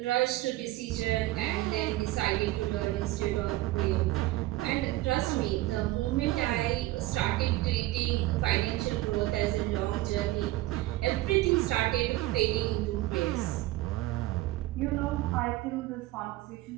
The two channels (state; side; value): quieter; left; 17.5 dB